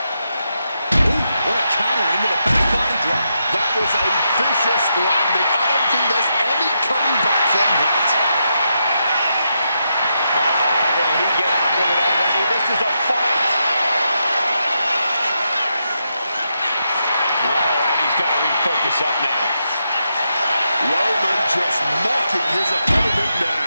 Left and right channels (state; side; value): inverted; both; correlation -0.83